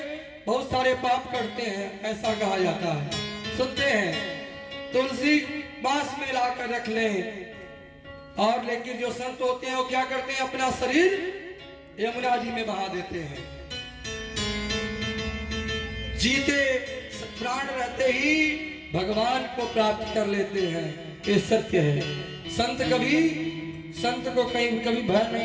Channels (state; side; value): identical; both; correlation 1.00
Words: बहुत सारे पाप करते हैं, ऐसा कहा जाता है। सुनते हैं तुलसी बांस में लाकर रख लें। और लेकिन जो संत होते हैं वो क्या करते हैं? अपना शरीर यमुना जी में बहा देते हैं। जीते प्राण रहते ही भगवान को प्राप्त कर लेते हैं। ये सत्य है। संत को कभी भय